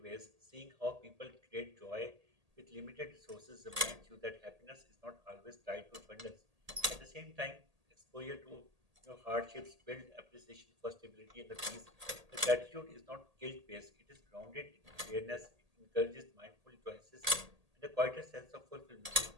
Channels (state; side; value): late; left; 1.8 ms